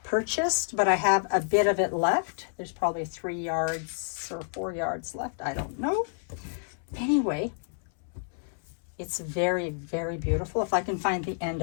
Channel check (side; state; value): right; silent; 59 dB below the other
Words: purchased, but I have a bit of it left. There's probably 3 yards or 4 yards left. I don't know. Anyway, it's very, very beautiful. If I can find the end